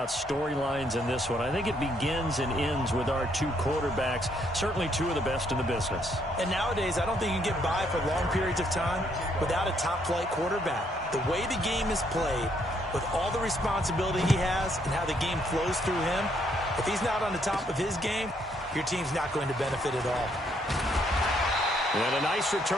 storylines in this one. I think it begins and ends with our two quarterbacks, certainly two of the best in the business. And nowadays, I don't think you can get by for long periods of time without a top-flight quarterback. The way the game is played, with all the responsibility he has and how the game flows through him, if he's not on the top of his game, your team's not going to benefit at all. And a nice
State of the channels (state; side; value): normal; both; correlation 0.71